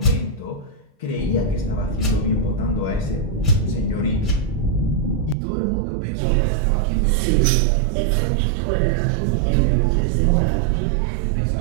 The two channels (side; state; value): left; drops out; at 5.4 s